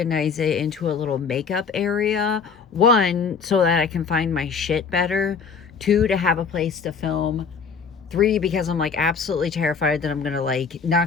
it into a little makeup area. 1, so that I can find my shit better. 2, to have a place to film. 3, because I'm like absolutely terrified that I'm gonna like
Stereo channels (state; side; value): quieter; right; 5.6 dB